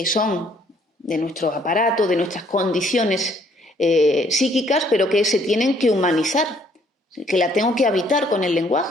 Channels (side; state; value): both; normal; correlation 0.65